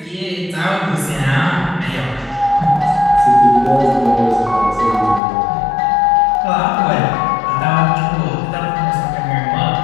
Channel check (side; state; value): right; drops out; at 5.2 s